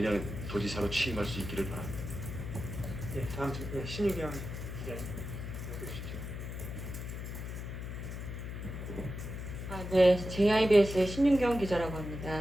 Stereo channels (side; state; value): left; noise; hum, 7 dB below the sound